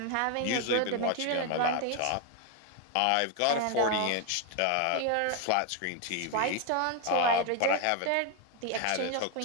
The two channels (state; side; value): different; both; correlation 0.01